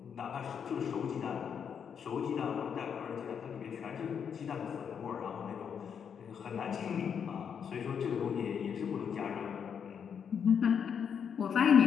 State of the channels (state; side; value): quieter; right; 7.4 dB